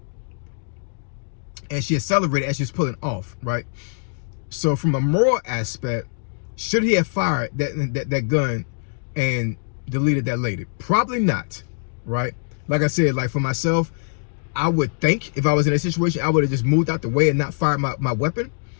and she accelerated as she was pulling off, right? So from a moral aspect, should he have fired that gun and deleted that lady? Probably not, right? Like I said, like, for myself, I would think if I was in a situation, I would have just moved out the way and not fired my weapon.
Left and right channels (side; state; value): right; silent; digital silence